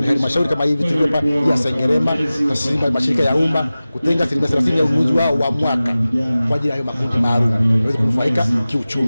ni halmashauri kama hivi tulipa ya Sengerema, taasisi mashirika ya umma kutenga 30% ya ununuzi wao wa mwaka kwa ajili ya hayo makundi maalum waweze kunufaika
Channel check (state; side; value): inverted; both; correlation -0.97